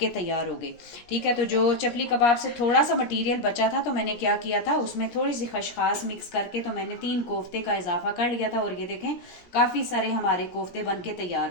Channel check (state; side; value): late; right; 17 ms